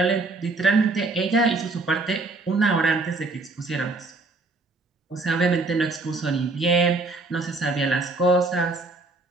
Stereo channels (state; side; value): quieter; left; 3.4 dB